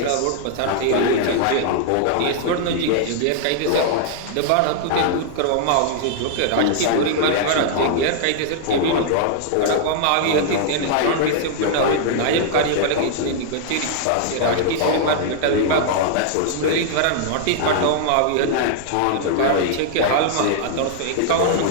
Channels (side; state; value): both; different; correlation -0.01